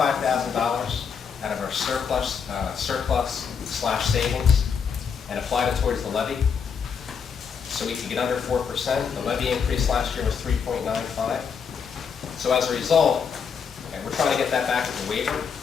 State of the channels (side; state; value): right; quieter; 6.5 dB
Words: of our surplus/savings and applied it towards the levy. So we could get under 4%. The levy increase last year was 3.95. So as a result, we're trying to get that back as a waiver.